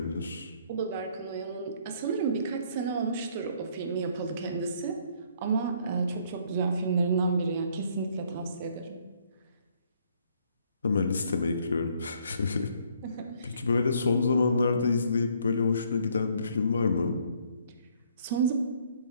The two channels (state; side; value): inverted; both; correlation -0.65